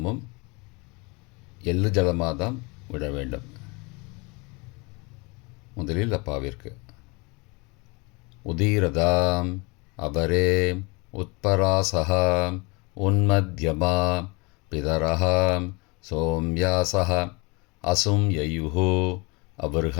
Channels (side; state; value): right; quieter; 28.3 dB